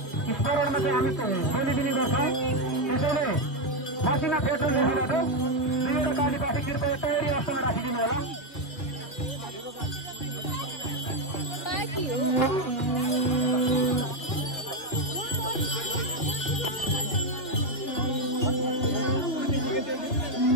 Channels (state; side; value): late; right; 3.2 ms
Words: स्मरणमा चाहिँ हामी बोलिदिने गर्छौँ। त्यसैले मसिना पेट्रोल लेखबाट दुईवटा कालीपासी कृपया तयारी अवस्थामा राखिदिनु होला।